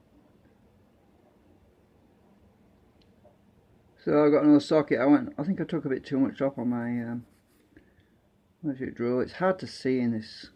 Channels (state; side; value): identical; both; correlation 1.00